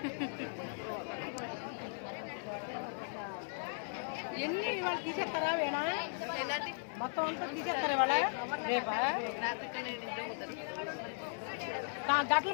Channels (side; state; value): right; silent; digital silence